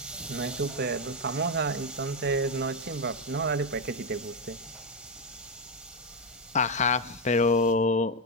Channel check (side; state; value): both; normal; correlation 0.06